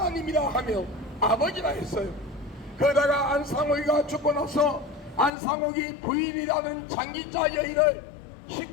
하며 아버지라 했어요. 그러다가 안상옥이가 죽고 나서 안상옥이 부인이라는 장기자 여인을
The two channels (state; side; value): drops out; right; at 5.3 s